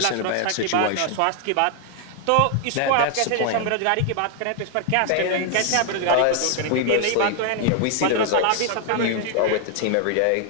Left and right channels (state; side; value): different; both; correlation 0.00